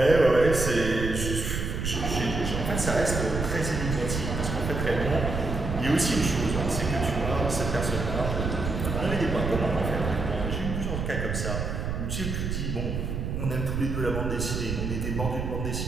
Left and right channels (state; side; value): noise; right; rumble, 3 dB below the sound